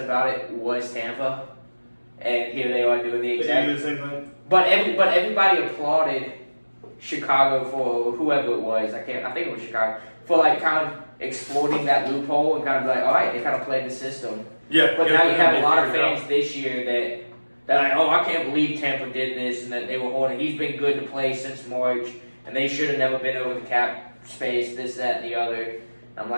it was Tampa. And here they are doing the exact same thing. But everybody applauded Chicago for whoever it was. I think it was Chicago for kind of exploiting that loophole and kind of all right, they kind of played the system. Yeah. But now you have a lot of fans this year that I can't believe Tampa did this and that they were holding. He's been good to play since March, and they should have never been over the cap space. This, that, and the other. I'm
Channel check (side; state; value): both; inverted; correlation -1.00